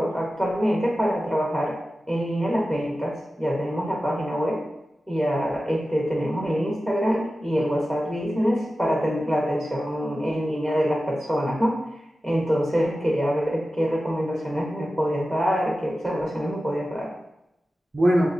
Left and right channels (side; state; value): both; normal; correlation 0.94